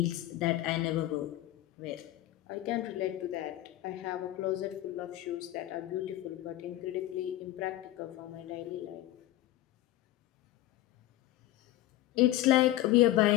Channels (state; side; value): quieter; right; 15.2 dB